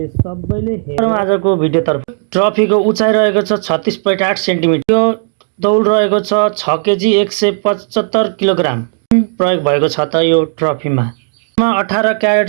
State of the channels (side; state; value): left; silent; 71 dB below the other